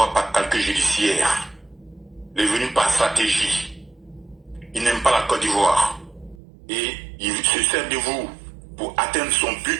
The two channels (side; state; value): left; drops out; at 6.4 s